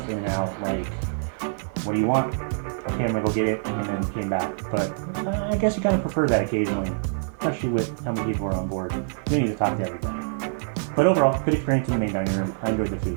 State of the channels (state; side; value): silent; left; digital silence